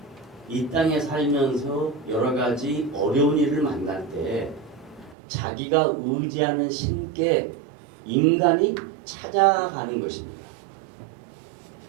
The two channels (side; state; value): left; drops out; at 5.2 s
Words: 이 땅에 살면서 여러 가지 어려운 일을 만날 때 자기가 의지하는 신께 인간이 찾아가는 것입니다.